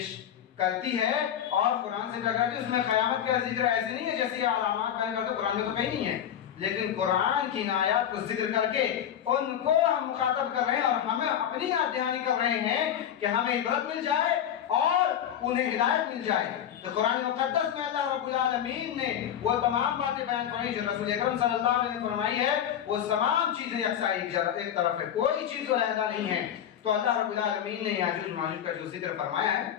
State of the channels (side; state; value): right; quieter; 9.7 dB